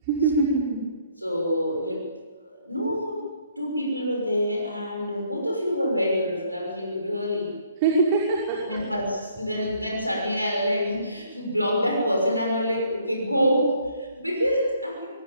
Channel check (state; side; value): inverted; both; correlation -0.65